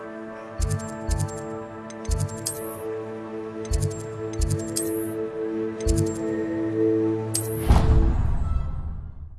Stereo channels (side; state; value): both; identical; correlation 1.00